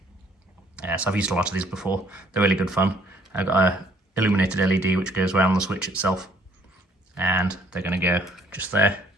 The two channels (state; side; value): normal; both; correlation 0.62